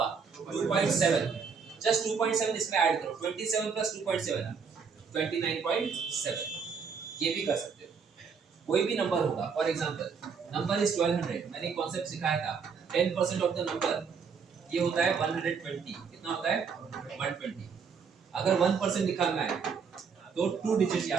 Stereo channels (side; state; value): left; quieter; 5.9 dB